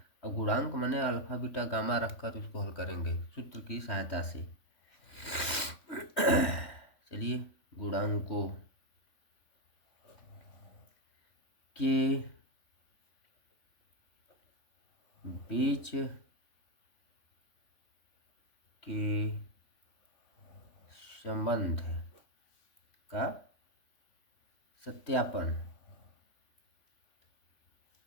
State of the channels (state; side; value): late; right; 3.5 ms